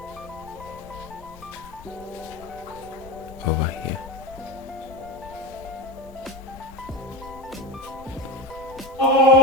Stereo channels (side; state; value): both; normal; correlation 0.24